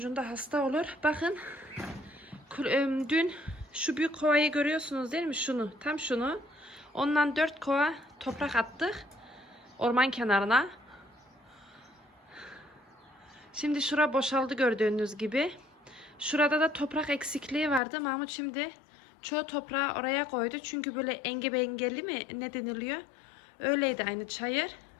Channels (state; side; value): drops out; right; at 17.8 s